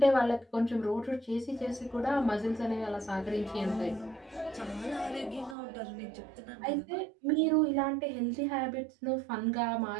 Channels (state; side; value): drops out; left; at 5.6 s